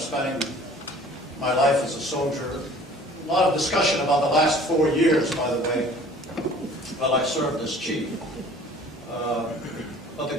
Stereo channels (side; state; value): both; normal; correlation 0.50